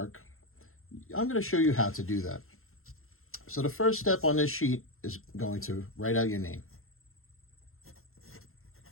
I'm going to show you how to do that. So the first step on this sheet is going to write out your name.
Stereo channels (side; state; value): right; late; 0.62 ms